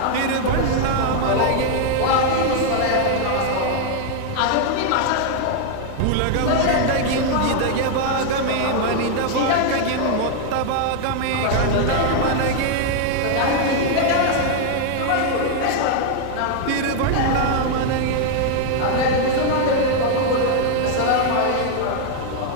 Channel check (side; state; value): both; different; correlation 0.00